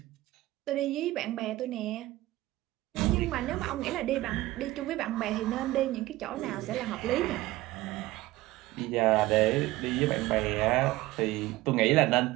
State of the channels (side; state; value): left; quieter; 17.8 dB